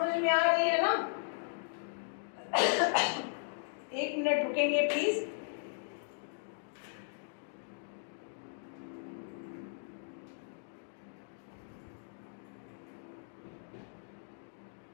में आ रही है ना? एक मिनट रुकेंगे प्लीज।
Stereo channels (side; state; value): right; silent; digital silence